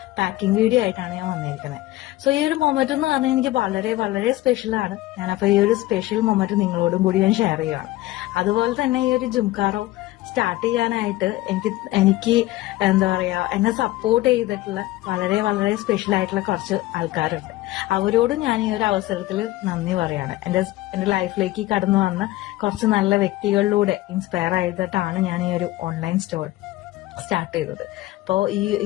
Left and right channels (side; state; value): right; quieter; 16.8 dB